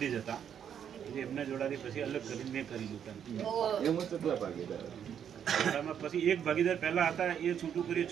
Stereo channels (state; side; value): quieter; left; 8.7 dB